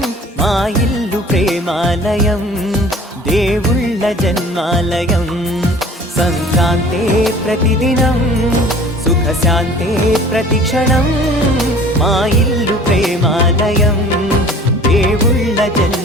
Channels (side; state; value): both; normal; correlation 0.47